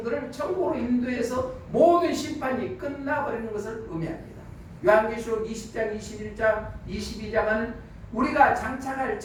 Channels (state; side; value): identical; both; correlation 1.00